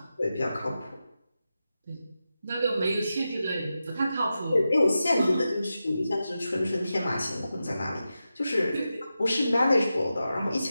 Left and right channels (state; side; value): inverted; both; correlation -0.91